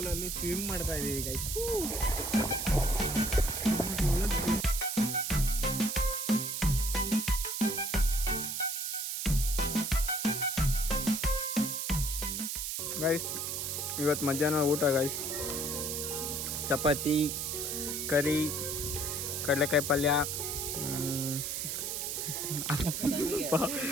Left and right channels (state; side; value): noise; right; hiss, 2 dB below the sound